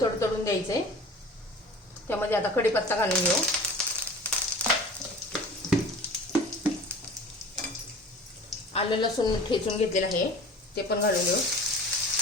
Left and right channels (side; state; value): both; normal; correlation 0.40